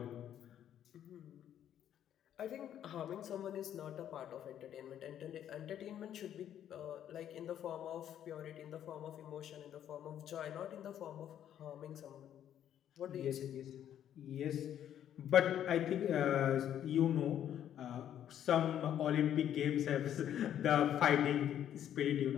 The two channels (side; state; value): right; quieter; 10.4 dB